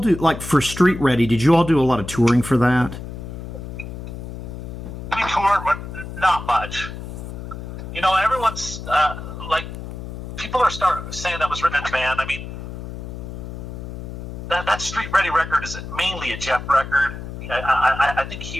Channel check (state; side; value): noise; left; hum, 9 dB below the sound